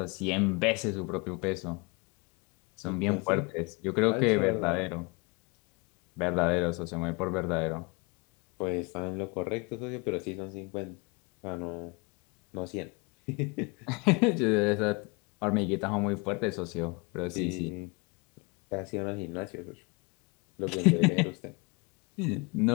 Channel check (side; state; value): right; quieter; 29.0 dB